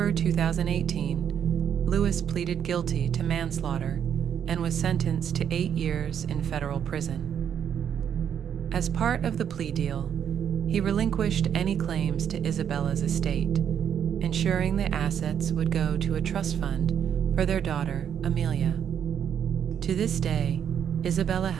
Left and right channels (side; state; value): left; quieter; 8.6 dB